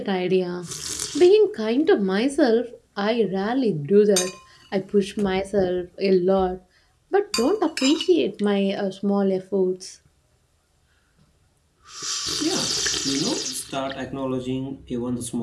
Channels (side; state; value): both; identical; correlation 1.00